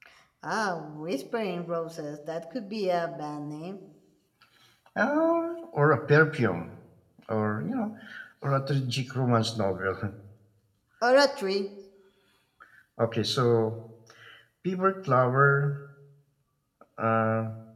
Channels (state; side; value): identical; both; correlation 1.00